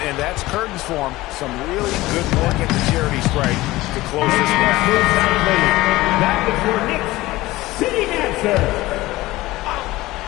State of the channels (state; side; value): quieter; right; 18.4 dB